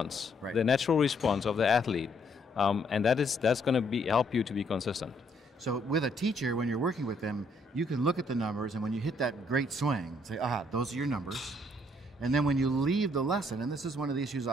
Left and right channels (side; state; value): both; normal; correlation 0.69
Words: the natural response of the athlete, and that's going to help you to be consistent. So with a teacher, when you're working with them, you can look at the numbers, and when you hit that great swing, say, those are your numbers. And then when you leave the lesson, and this is one of the issues